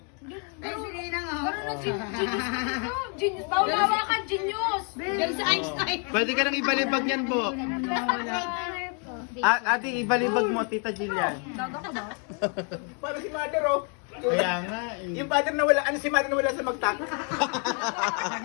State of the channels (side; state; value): right; quieter; 39.4 dB